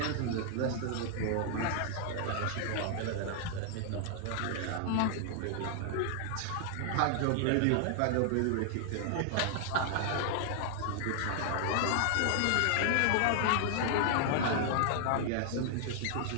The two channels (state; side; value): different; both; correlation 0.00